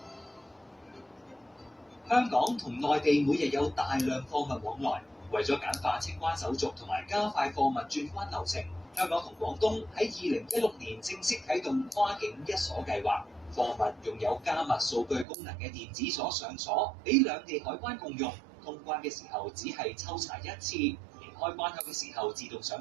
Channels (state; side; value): drops out; left; at 15.2 s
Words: 香港同內地每日有大量貨物往來，為咗簡化清關手續同埋加快貨物轉關流程，香港同廣東喺2016年正式啟動跨境一鎖計劃。貨物用有加密數據功能嘅電子鎖上鎖，俾兩地海關共用。通關嘅時候只係抽查一次，離開關口嘅時候自動上